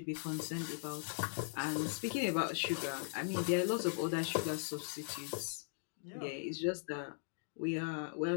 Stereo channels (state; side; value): silent; right; digital silence